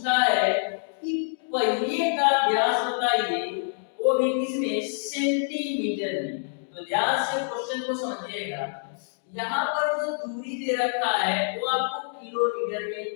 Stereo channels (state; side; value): silent; right; digital silence